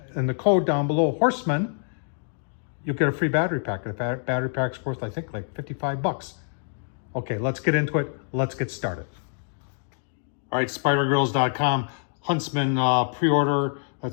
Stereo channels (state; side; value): silent; right; digital silence